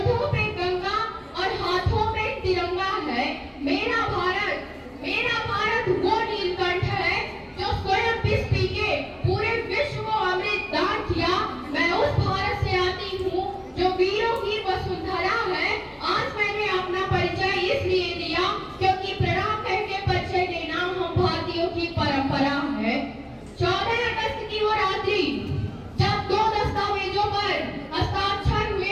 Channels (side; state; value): both; identical; correlation 1.00